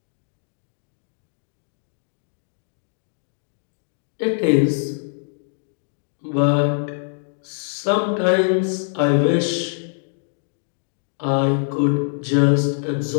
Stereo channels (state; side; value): silent; right; digital silence